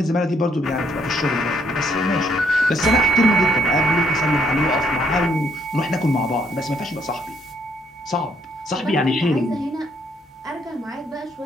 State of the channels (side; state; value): both; normal; correlation 0.70